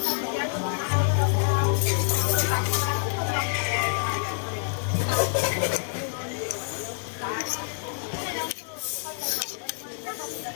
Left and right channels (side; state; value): right; silent; 60 dB below the other